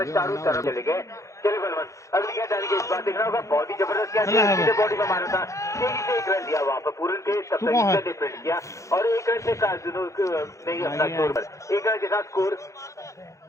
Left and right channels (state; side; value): late; right; 0.15 ms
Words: चारों तरफ चले गए। चलिए बलवंत अगली गेंद डाली गई इस बार देख रहा होगा बहुत ही जबरदस्त क्या बॉडी में मारा था तेजी से एक रन लिया वहाँ पर पूरन के तब तक डिफेंड किया और एक रन से नहीं अपना स्कोर पर एक रन के साथ स्कोर